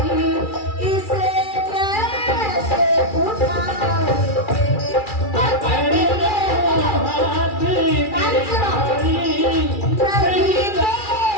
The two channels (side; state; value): right; late; 2.3 ms